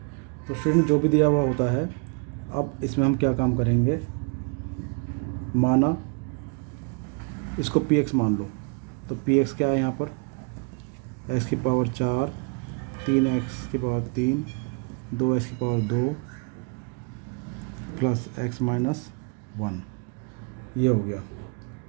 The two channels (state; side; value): quieter; left; 32.1 dB